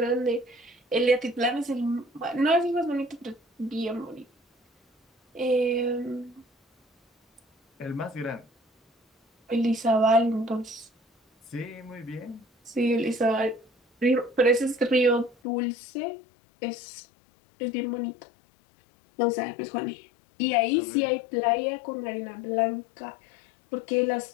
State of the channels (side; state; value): right; drops out; at 15.4 s